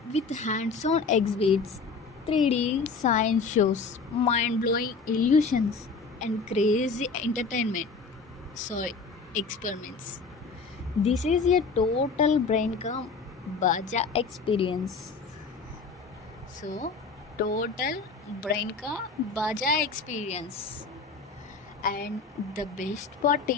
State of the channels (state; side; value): quieter; right; 4.6 dB